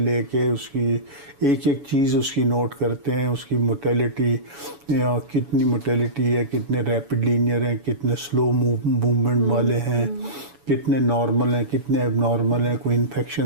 کے اس کی ایک ایک چیز اس کی نوٹ کرتے ہیں. اس کی موٹیلٹی, کتنی موٹیلٹی ہے, کتنے ریپڈ لینئر ہیں, کتنے سلو موومنٹ والے ہیں, کتنے نارمل ہیں کتنے اب نارمل ہیں, کوئی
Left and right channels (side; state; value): left; late; 7.1 ms